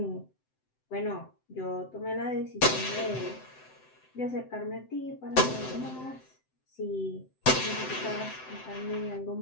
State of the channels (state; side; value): late; right; 7.8 ms